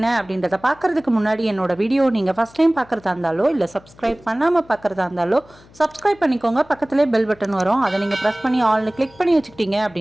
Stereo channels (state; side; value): noise; left; hum, 26 dB below the sound